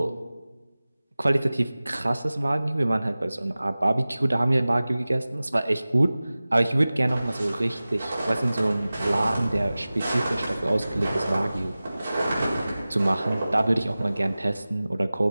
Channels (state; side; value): inverted; both; correlation -0.97